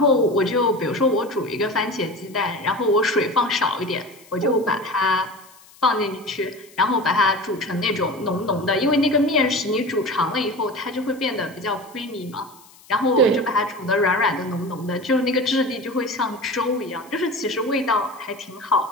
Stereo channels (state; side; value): noise; left; hiss, 25 dB below the sound